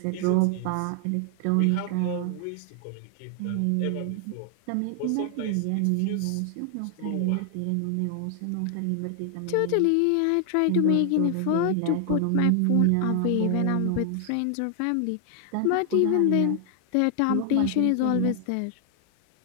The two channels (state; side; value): different; both; correlation 0.00